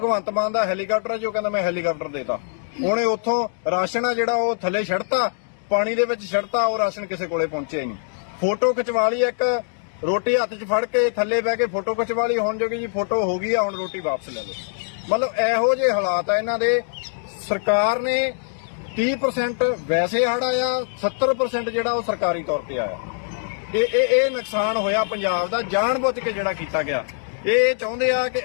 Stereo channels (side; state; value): right; silent; 64 dB below the other